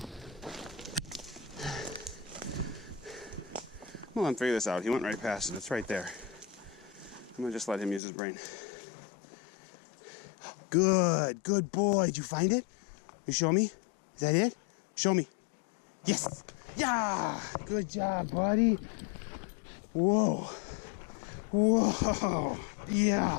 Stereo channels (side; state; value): right; drops out; at 8.0 s